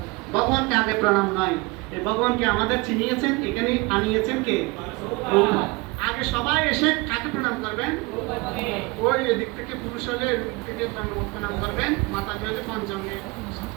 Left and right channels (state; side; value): quieter; left; 25.1 dB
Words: ভগবানকে আগে প্রণাম নয়, এই ভগবানকে আমাদের চিনিয়েছেন, এখানে আনিয়েছেন কে? প্রভুপাদ। আগে সবাই এসে কাকে প্রণাম করবেন? ওই এদিক থেকে পুরুষ হলে এদিক থেকে প্রণাম করবেন, মাতা হলে পঞ্চমে